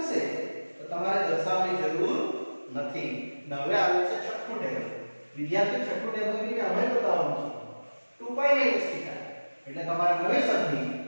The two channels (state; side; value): inverted; both; correlation -1.00